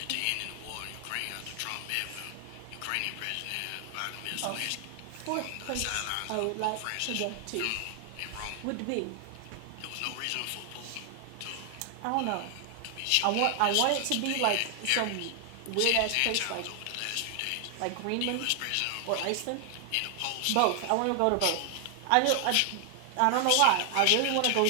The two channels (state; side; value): different; both; correlation 0.00